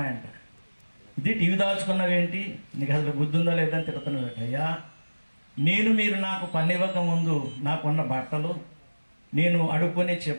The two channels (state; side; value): inverted; both; correlation -1.00